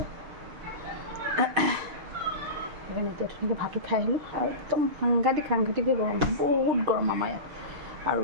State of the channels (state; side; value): late; left; 6.5 ms